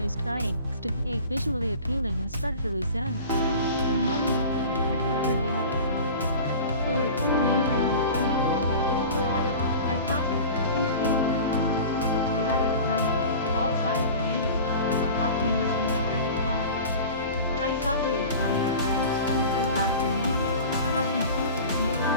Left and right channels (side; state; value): both; inverted; correlation -0.37